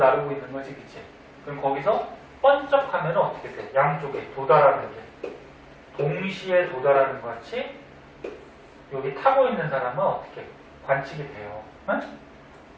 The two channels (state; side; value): identical; both; correlation 1.00